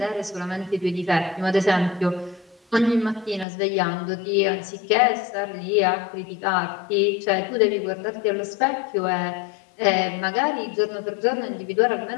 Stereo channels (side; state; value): right; drops out; at 3.5 s